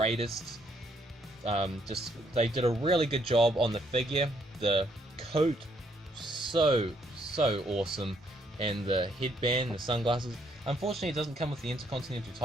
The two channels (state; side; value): normal; both; correlation 0.71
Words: They did a really good job on the figure. The coat so awesome. And the headband, the sunglasses. Unfortunately, it doesn't come with the Intercontinental